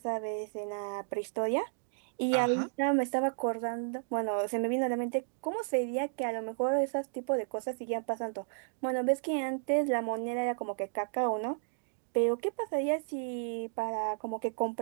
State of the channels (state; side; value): silent; left; digital silence